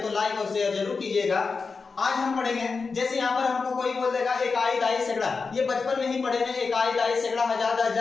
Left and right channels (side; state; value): right; quieter; 4.6 dB